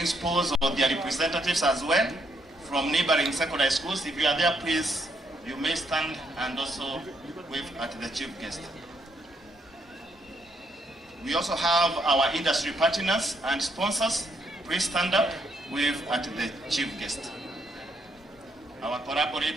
or their representatives as well from neighboring secondary schools. If you are there, please, you may stand and also wave at the chief guest. We also have our industry partners and sponsors. Please stand up, wave at the chief guest. Our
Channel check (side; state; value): both; normal; correlation 0.74